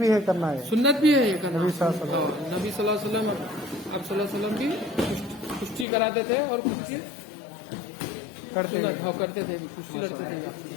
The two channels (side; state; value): right; drops out; at 5.9 s